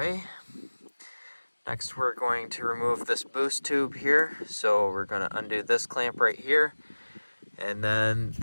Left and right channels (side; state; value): both; inverted; correlation -1.00